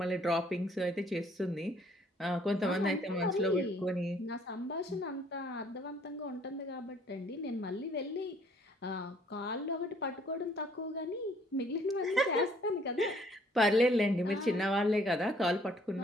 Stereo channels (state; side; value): normal; both; correlation 0.62